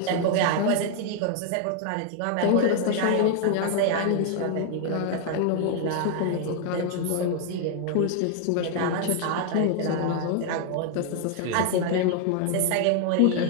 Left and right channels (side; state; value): both; different; correlation 0.00